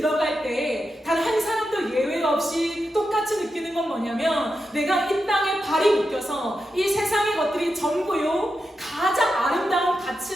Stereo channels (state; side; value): normal; both; correlation 0.88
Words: 때 단 한 사람도 예외 없이 똑같이 느끼는 건 뭐냐면, 내가 이 땅에 발이 묶여서 이 세상의 것들이 전부요 가장 아름다운